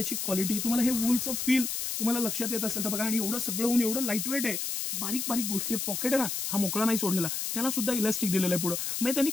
क्वालिटी, तुम्हाला हे वूलचं फील तुम्हाला लक्षात येत असेल तर बघा. आणि एवढं सगळं होऊन एवढं लाईट वेट आहे, बारीक बारीक गोष्टी. पॉकेट आहे ना, हा मोकळा नाही सोडलेला, त्याला सुद्धा इलास्टिक दिलेलं आहे पुढं. म्हणजे त्यांनी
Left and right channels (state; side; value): noise; left; hiss, 2 dB below the sound